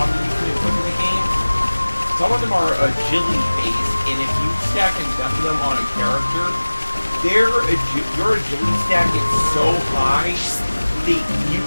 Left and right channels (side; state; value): both; inverted; correlation -1.00